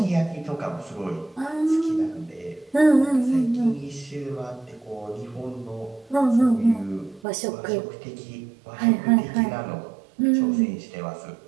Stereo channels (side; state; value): left; drops out; at 7.2 s